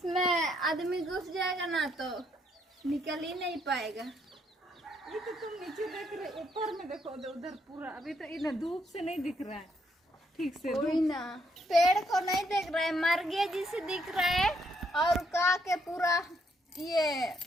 आदमी घुस जाएगा ना तो निकल ही नहीं पाएगा। ये तो तुम नीचे देख रहे, ऊपर में देखो उधर पूरा। अभी तो ये ना धूप से नहीं दिख रहा है ठीक से। कोई ना पेड़ को नहीं देख रहा है, मर गया जिसे दिख रहा है। और का के पूरा ये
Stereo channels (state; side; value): normal; both; correlation 0.73